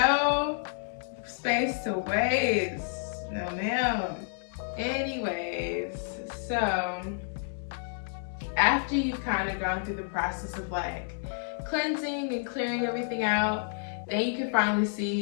space to waste. No ma'am. Anyways, so after you've kind of gone through the process of like cleansing and clearing everything out, then you can finally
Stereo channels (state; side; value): silent; right; digital silence